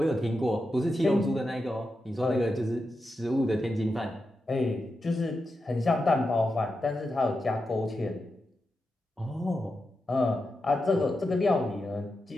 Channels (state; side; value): normal; both; correlation 0.89